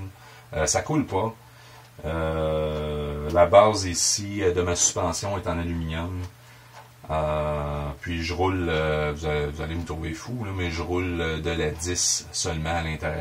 Ça coule pas. La base ici de ma suspension est en aluminium. Puis je roule, vous allez me trouver fou, là, mais je roule de la 10 seulement à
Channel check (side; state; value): both; identical; correlation 1.00